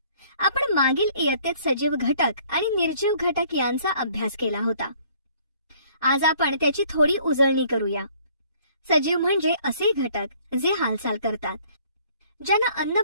आपण मागील इयत्तेत सजीव घटक आणि निर्जीव घटक यांचा अभ्यास केला होता. आज आपण त्याची थोडी उजळणी करूया. सजीव म्हणजे असे घटक जे हालचाल करतात, ज्यांना अन्न,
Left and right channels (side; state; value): both; inverted; correlation -0.58